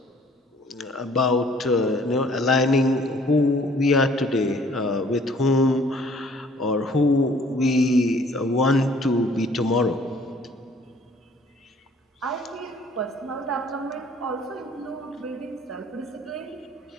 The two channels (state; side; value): normal; both; correlation 0.57